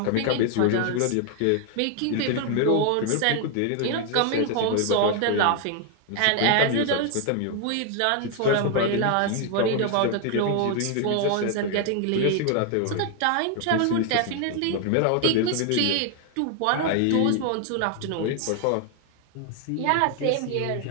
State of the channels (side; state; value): both; different; correlation 0.00